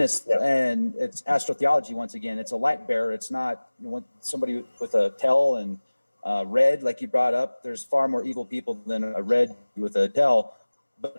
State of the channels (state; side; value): inverted; both; correlation -1.00